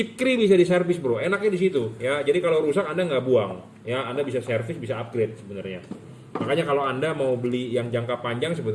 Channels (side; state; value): both; identical; correlation 1.00